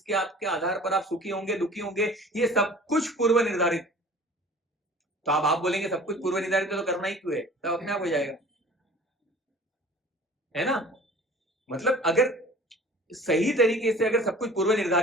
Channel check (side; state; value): both; normal; correlation 0.46